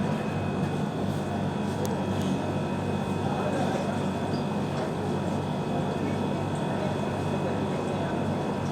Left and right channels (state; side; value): identical; both; correlation 1.00